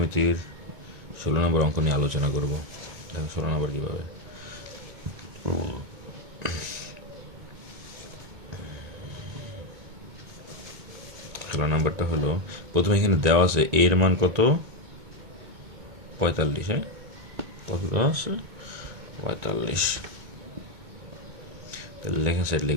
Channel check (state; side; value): late; left; 2.2 ms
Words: 16 নম্বর অঙ্ক নিয়ে আলোচনা করব। দেখেন 16 নম্বর কীভাবে। 16 নম্বরটা হলো, প্রথমে এখানে দেওয়া আছে এর মান কত, 45। হ্যাঁ, কত দেওয়া আছে, 45। তাহলে লেখেন সাইড